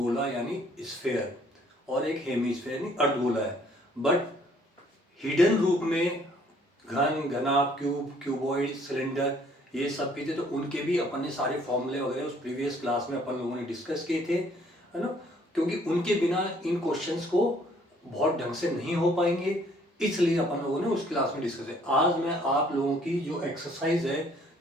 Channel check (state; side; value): normal; both; correlation 0.61